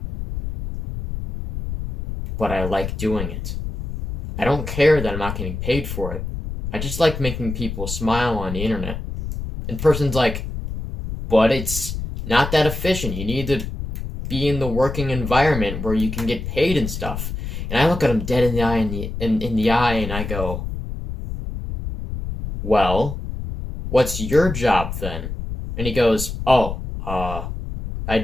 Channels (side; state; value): left; noise; rumble, 6 dB below the sound